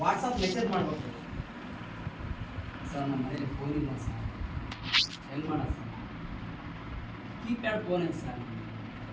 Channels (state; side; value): identical; both; correlation 1.00